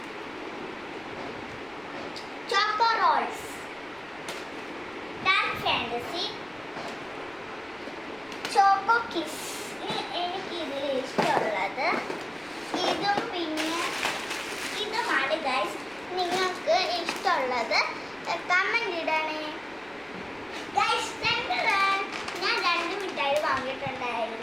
choco rolls, Dark Fantasy, choco kiss. എനിക്കിതിൽ ഇഷ്ടമുള്ളത് ഇതും പിന്നെ ഇതുമാണ് ഗൈസ്. നിങ്ങൾക്ക് ഇഷ്ടമുള്ളത് കമൻറ്റ് ഇടണേ ഗൈസ്. ഞാൻ രണ്ട് മിഠായി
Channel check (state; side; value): noise; right; rumble, 28 dB below the sound